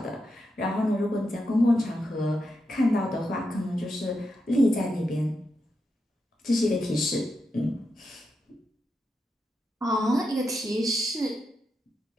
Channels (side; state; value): both; normal; correlation 0.86